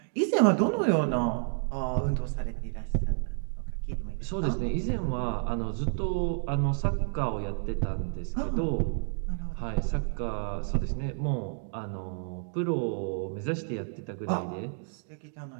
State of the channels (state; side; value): silent; left; digital silence